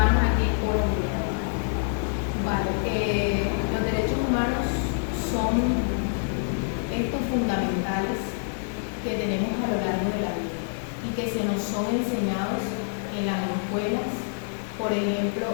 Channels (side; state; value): right; silent; digital silence